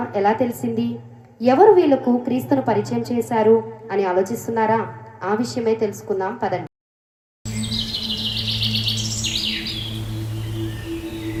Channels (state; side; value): identical; both; correlation 1.00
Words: ఎలా తెలిసింది? ఎవరు వీళ్లకు క్రీస్తును పరిచయం చేశారు అని ఆలోచిస్తున్నారా? ఆ విషయమే తెలుసుకుందాం పదండి.